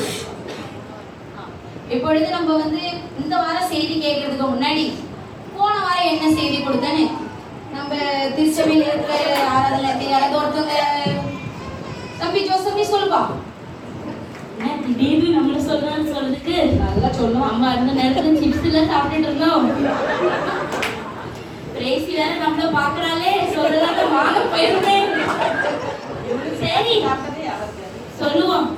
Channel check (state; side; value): identical; both; correlation 1.00